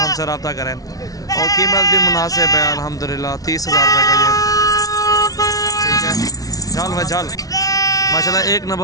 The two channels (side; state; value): right; late; 0.18 ms